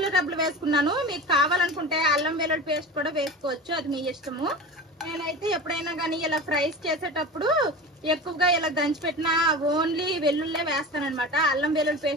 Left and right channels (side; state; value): both; normal; correlation 0.31